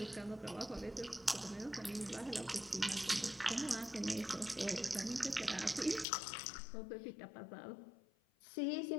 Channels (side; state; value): right; drops out; at 6.1 s